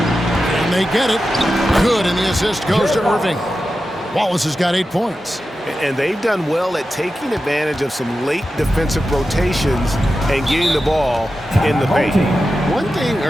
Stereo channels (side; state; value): both; normal; correlation 0.92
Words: And they get it. Good, and the assist goes to Irving. Wallace has got 8 points. And they've done well at taking advantage of some late defensive rotations and getting the ball in the paint. One thing